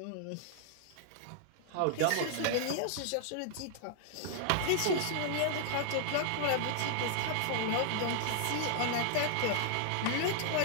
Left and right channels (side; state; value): both; different; correlation -0.01